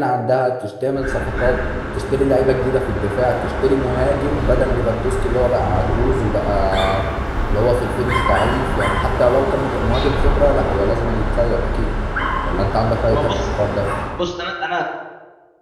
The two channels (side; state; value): both; identical; correlation 1.00